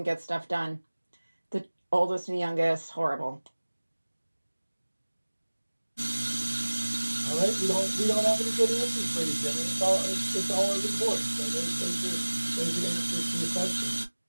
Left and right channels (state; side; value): inverted; both; correlation -1.00